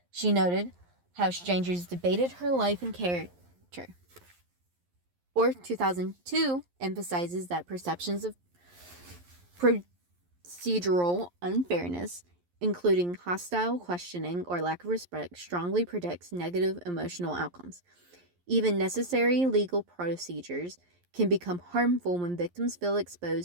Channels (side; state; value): left; late; 11 ms